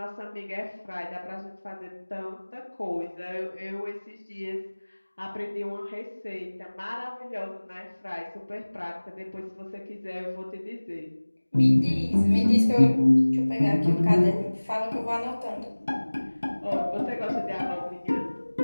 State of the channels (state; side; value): inverted; both; correlation -1.00